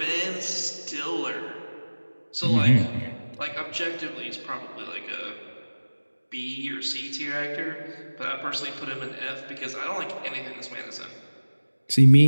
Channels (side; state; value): both; inverted; correlation -1.00